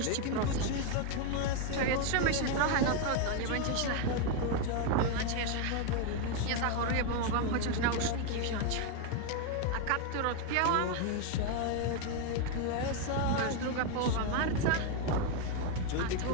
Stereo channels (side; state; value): both; different; correlation 0.01